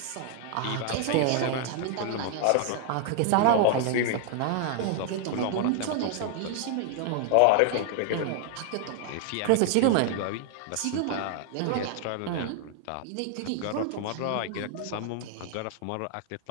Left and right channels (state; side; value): different; both; correlation 0.00